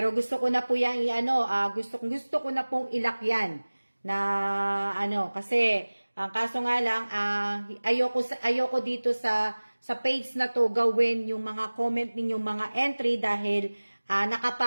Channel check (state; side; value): inverted; both; correlation -1.00